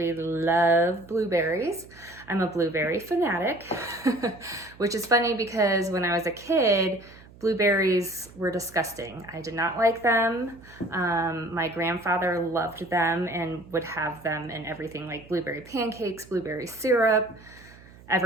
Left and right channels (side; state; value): right; noise; hum, 22 dB below the sound